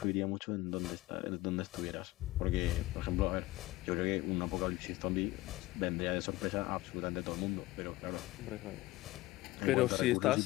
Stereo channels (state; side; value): quieter; right; 18.5 dB